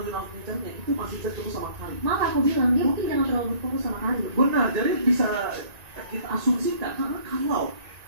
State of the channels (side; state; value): left; late; 1.9 ms